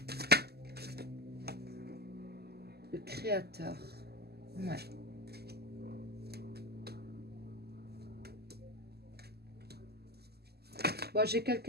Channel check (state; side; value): late; left; 0.46 ms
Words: Le créateur. Ouais. Bon, j'ai